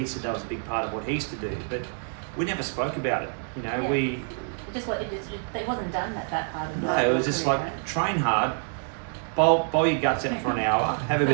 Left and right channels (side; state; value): left; silent; 60 dB below the other